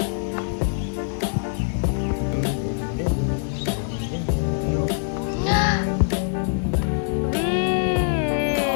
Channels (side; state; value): right; silent; digital silence